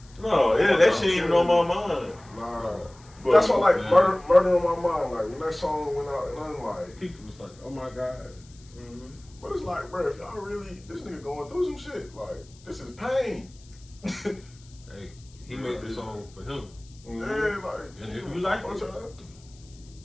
No, that shit ain't even on my mind. nah. But, That's why like man. murder on my mind. Like when that song went out, and I'm like, People was like, oh my God. Mhm. but it's like, bro, if y'all really this nigga going through some shit, like this is pain. Hey, he made the song for him. Yeah, like. And if you like it, y'all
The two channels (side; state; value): left; noise; hiss, 26 dB below the sound